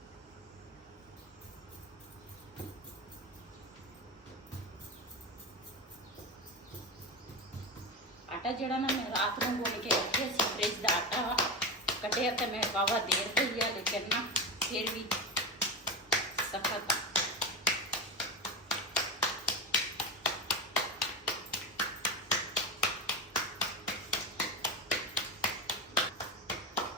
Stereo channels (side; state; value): both; normal; correlation 0.19